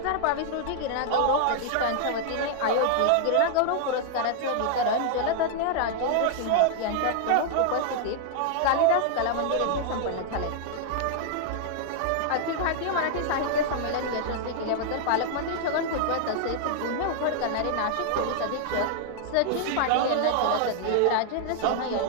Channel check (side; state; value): both; different; correlation -0.01